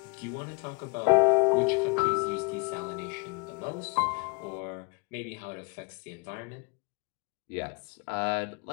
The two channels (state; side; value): quieter; right; 29.8 dB